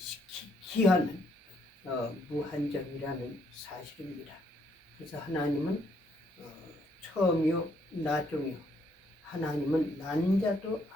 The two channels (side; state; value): both; normal; correlation 0.71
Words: 기하는 무한정이라는 사실입니다. 그래서 하나님은 처음이요 나중이요, 하나님은 난 자도